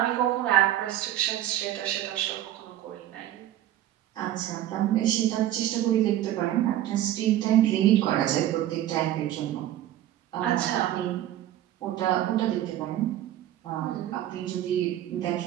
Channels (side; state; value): left; quieter; 12.8 dB